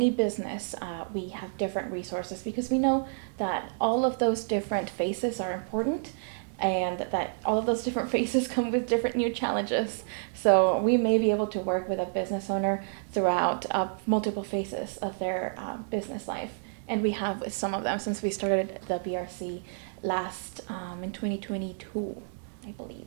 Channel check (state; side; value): silent; left; digital silence